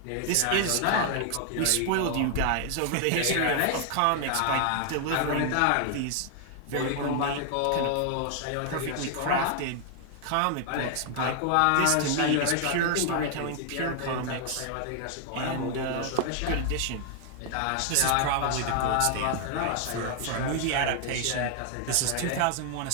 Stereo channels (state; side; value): different; both; correlation 0.00